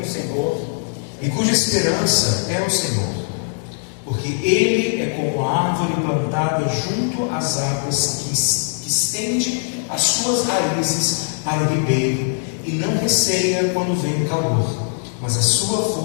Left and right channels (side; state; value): right; silent; digital silence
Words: Senhor e cuja esperança é o Senhor, porque ele é como a árvore plantada junto às águas que estende as suas raízes para o ribeiro e não receia quando vem o calor, mas a sua